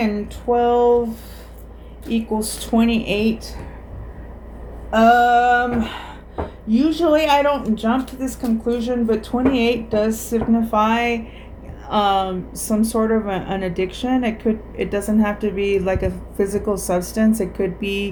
12 equals 28. Usually I don't jump to this conclusion, but 28 does signify some sort of an addiction. It doesn't have to be like a physical substance. It could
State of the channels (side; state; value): both; identical; correlation 1.00